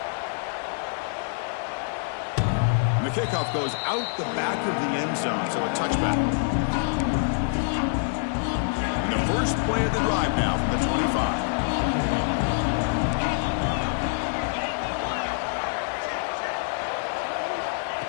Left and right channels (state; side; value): silent; right; digital silence